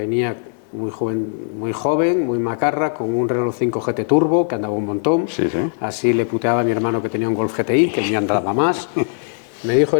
muy joven, muy macarra, con un Renault 5 GT Turbo, que andaba un montón. Sí, sí. Así le puteaba a mi hermano que tenía un Golf GTI, que el mío andaba más. Me dijo,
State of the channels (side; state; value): right; silent; digital silence